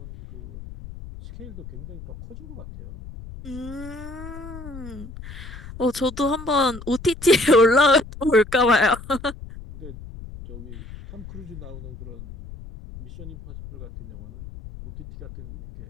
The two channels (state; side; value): noise; left; rumble, 13 dB below the sound